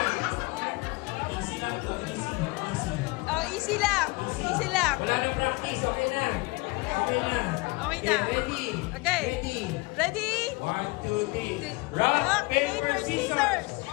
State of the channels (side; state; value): right; quieter; 25.1 dB